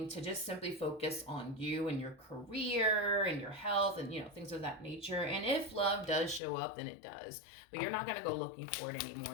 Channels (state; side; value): drops out; right; at 6.4 s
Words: to just simply focus on you and your career and your health and, things of that nature. And if love does show up, then it does. But you're not going to go looking for it